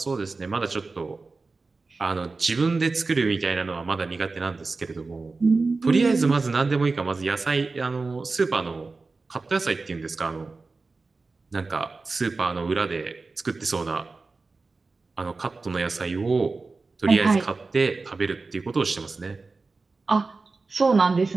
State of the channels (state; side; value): quieter; left; 3.9 dB